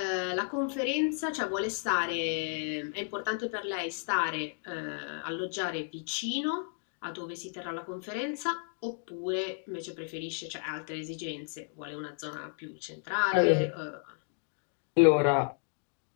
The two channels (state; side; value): silent; right; 56 dB below the other